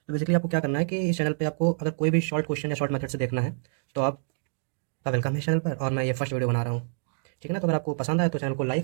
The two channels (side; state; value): left; silent; digital silence